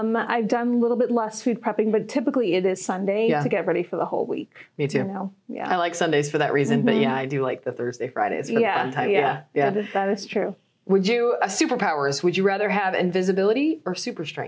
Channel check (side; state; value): both; identical; correlation 1.00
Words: done a little bit less food prepping, but typically it is Sunday to get ready for the whole week. Me too. Yeah. I like Sundays for that reason, but yeah, I do like the Thursday, Fridays for the fun time. Yeah. That is true. Would you, superpowers, would you rather have invisibility or super